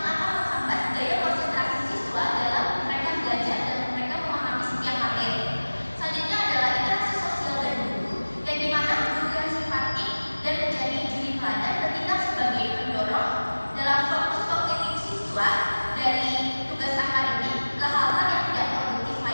akan menghambat daya konsentrasi siswa dalam mereka belajar dan mereka memahami setiap materi. Selanjutnya adalah interaksi sosial dan guru, yang dimana guru yang simpatik dan menjadi juri teladan bertindak sebagai pendorong dalam fokus kognitif siswa dari tugas akademik ke hal-hal yang tidak produktif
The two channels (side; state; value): both; inverted; correlation -1.00